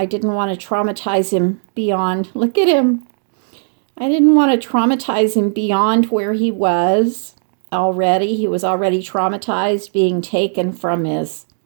didn't want to traumatize him beyond, look at him. I didn't want to traumatize him beyond where he was already. He was already traumatized, being taken from his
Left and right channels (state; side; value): silent; left; digital silence